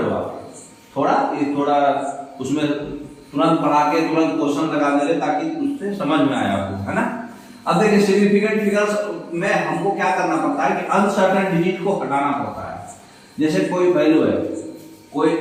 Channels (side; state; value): both; identical; correlation 1.00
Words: हो आप। थोड़ा उसमें तुरंत पढ़ा के तुरंत क्वेश्चन लगा दे रहे ताकि उससे समझ में आए आपको, है ना। अब देखिए सिग्निफिकेंट फिगर्स में हमको क्या करना पड़ता है कि अनसर्टेन डिजिट को हटाना पड़ता है। जैसे कोई वैल्यू है, कोई